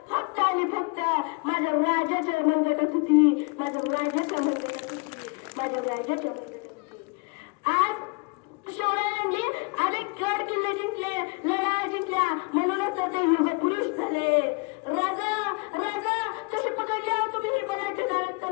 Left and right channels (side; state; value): right; quieter; 31.8 dB